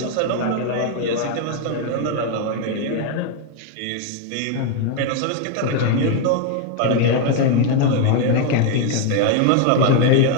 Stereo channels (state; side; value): different; both; correlation 0.00